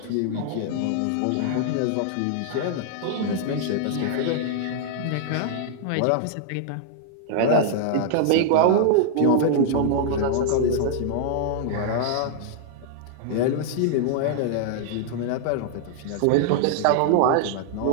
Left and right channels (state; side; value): different; both; correlation -0.01